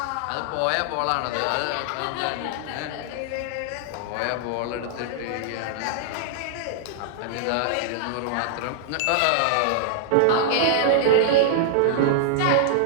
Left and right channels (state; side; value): different; both; correlation -0.01